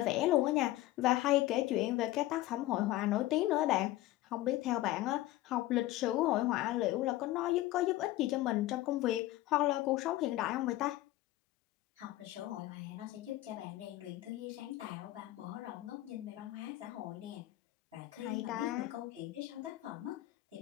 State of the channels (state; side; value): quieter; right; 16.2 dB